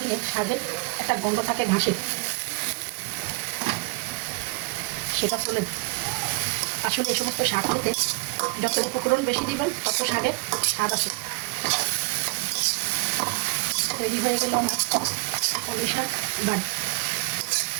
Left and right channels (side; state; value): left; quieter; 27.7 dB